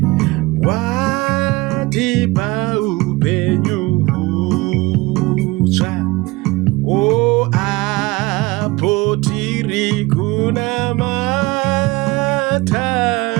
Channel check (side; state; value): left; quieter; 22.2 dB